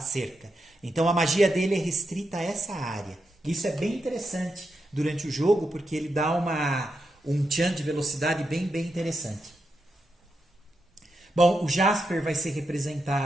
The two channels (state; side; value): normal; both; correlation 0.85